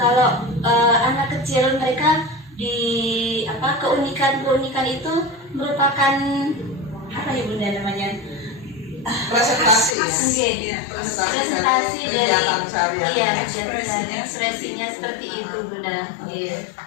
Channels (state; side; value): drops out; right; at 10.0 s